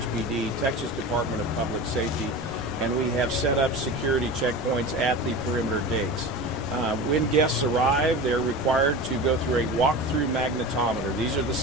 Texas Department of Public Safety, and we have set up security checkpoints at the perimeter gates. When guests arrive, they're required to go through a walk-through magnetometer. These are the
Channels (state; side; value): normal; both; correlation 0.31